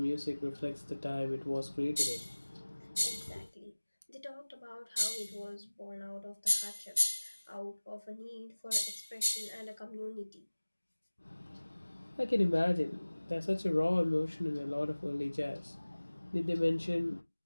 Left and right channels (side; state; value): both; inverted; correlation -1.00